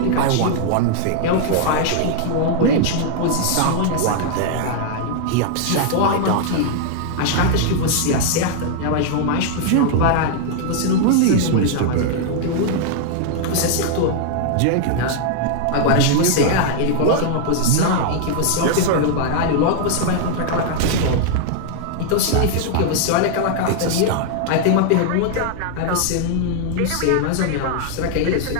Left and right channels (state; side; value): different; both; correlation -0.01